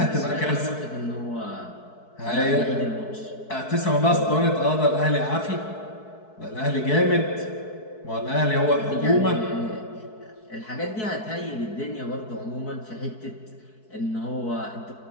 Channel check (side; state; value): right; late; 4.6 ms